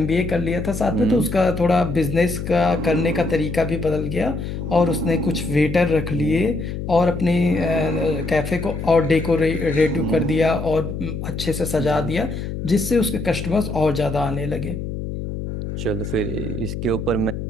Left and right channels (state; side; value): noise; left; hum, 6 dB below the sound